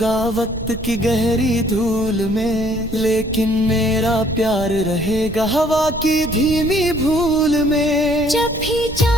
वक्त की गहरी धूल में, लेकिन मेरा प्यार रहेगा हवा की धीमी भूल में। जब भी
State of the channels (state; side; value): noise; right; rumble, 11 dB below the sound